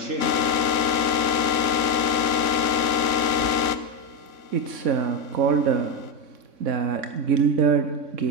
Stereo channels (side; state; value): left; late; 3.5 ms